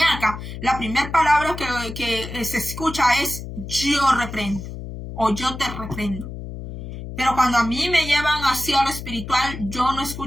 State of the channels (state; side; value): noise; left; hum, 9 dB below the sound